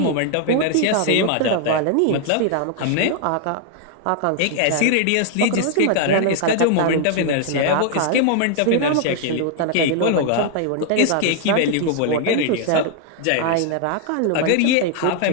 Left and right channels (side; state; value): both; different; correlation 0.00